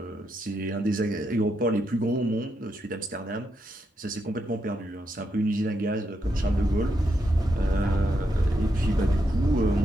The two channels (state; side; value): normal; both; correlation 0.82